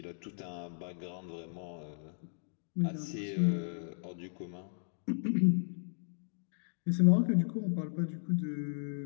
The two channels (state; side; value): silent; right; digital silence